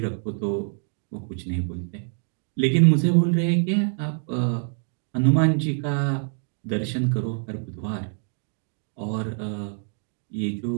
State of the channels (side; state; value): left; silent; digital silence